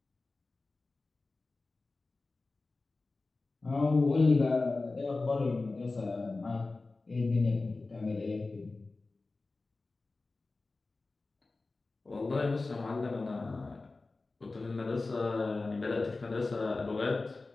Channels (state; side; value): quieter; right; 3.5 dB